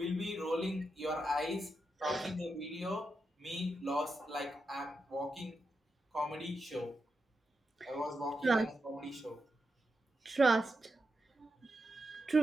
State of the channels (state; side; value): normal; both; correlation 0.86